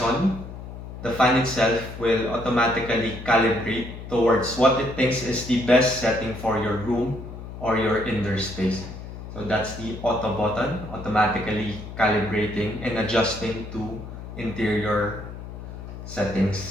the fan itself will automatically calibrate towards what it thinks is the best setting for your room or your indoor space. So that's the auto button, automatically calibrating and adjusting to interior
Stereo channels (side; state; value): left; noise; hum, 11 dB below the sound